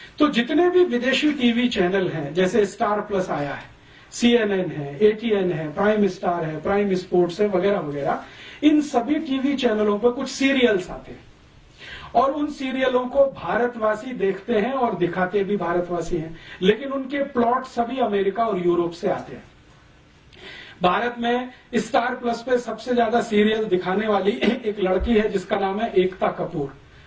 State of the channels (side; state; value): both; identical; correlation 1.00